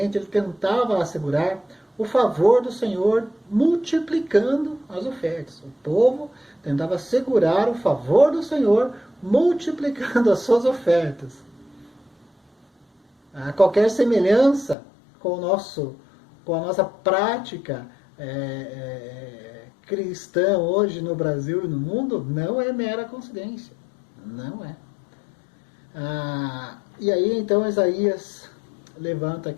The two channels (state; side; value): drops out; right; at 14.8 s